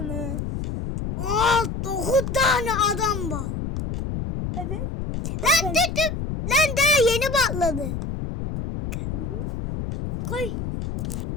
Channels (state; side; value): noise; left; rumble, 4 dB below the sound